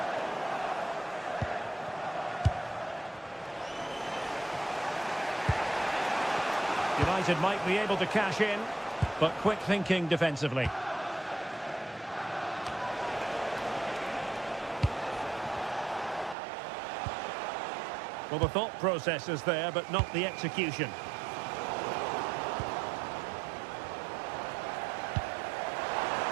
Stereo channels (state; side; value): drops out; left; at 16.4 s